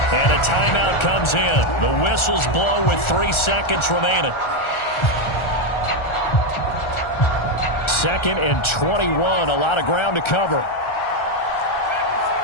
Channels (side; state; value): right; late; 1.4 ms